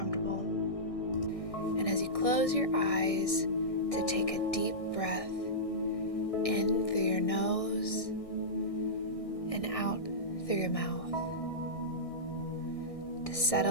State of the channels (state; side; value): late; right; 1.6 ms